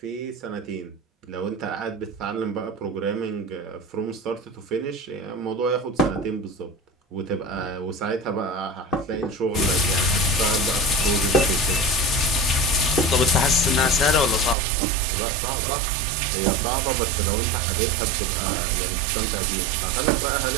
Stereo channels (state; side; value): drops out; left; at 14.6 s